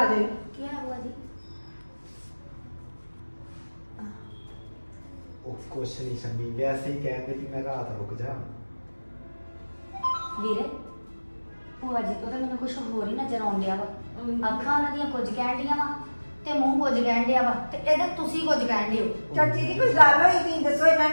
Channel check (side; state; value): both; inverted; correlation -1.00